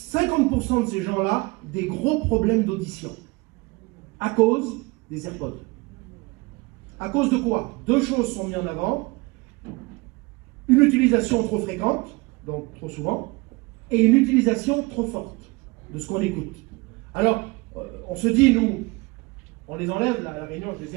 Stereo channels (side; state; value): left; quieter; 24.7 dB